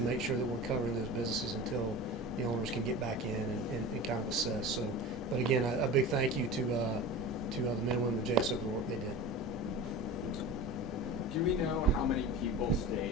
sure that we're covering those businesses until the owners can get back in and kind of assess. So, but again, a big thank you to the men and women of JSO for the work they did. Do we know how many people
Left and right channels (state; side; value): normal; both; correlation 0.32